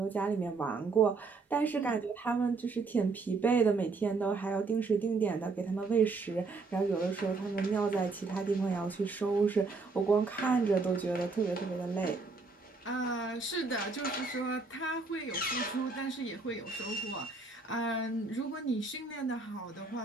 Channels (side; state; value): left; quieter; 4.1 dB